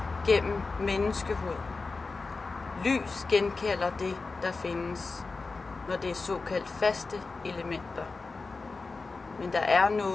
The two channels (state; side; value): quieter; right; 4.0 dB